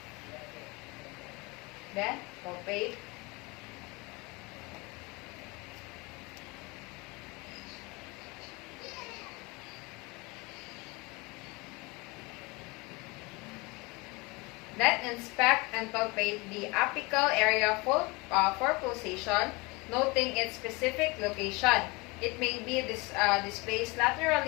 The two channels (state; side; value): quieter; right; 25.3 dB